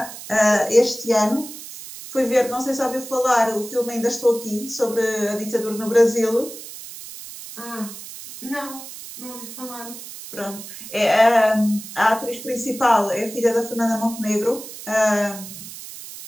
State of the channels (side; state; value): right; noise; hiss, 13 dB below the sound